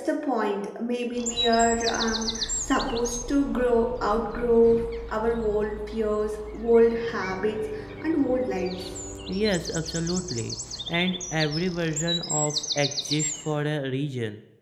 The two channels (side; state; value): both; identical; correlation 1.00